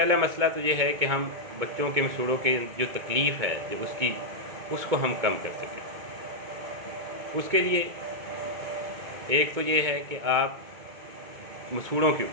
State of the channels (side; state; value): left; late; 2.2 ms